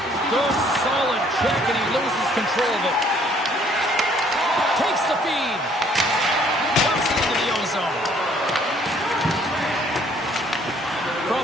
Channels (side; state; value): both; normal; correlation 0.61